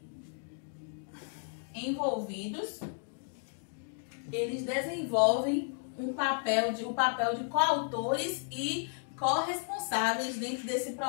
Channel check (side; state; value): right; silent; 56 dB below the other